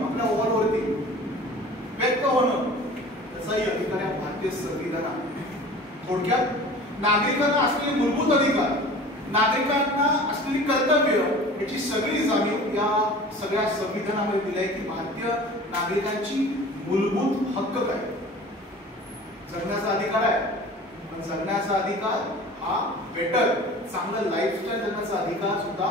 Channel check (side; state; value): both; normal; correlation 0.41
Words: आपल्या वॉलवरती व्यक्त होणं, त्याचाही अधिकार या भारतीय संविधानात. थोडक्यात नागरिकांना असलेले मूलभूत अधिकार, नागरिकांना असलेली कर्तव्य याची सगळी जाणीव या सगळ्या संविधानामध्ये दिली आहे की भारतीय नागरिकांची मूलभूत हक्क काय. जगण्याचा अधिकार आहे, पण जगण्याचा अधिकार हा बेटर, चांगलं लाईफस्टाईल जगण्याचा अधिकार सुद्धा